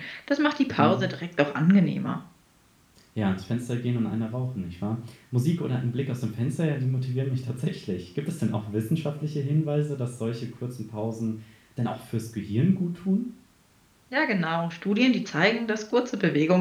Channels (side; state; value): both; identical; correlation 1.00